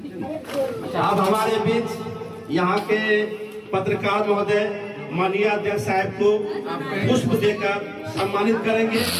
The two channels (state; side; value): identical; both; correlation 1.00